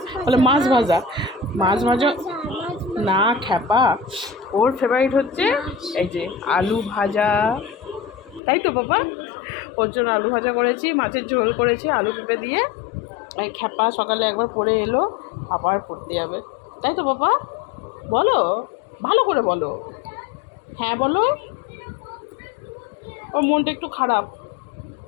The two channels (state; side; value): drops out; right; at 8.4 s